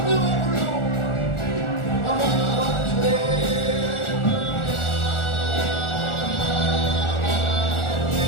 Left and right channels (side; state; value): right; late; 1.4 ms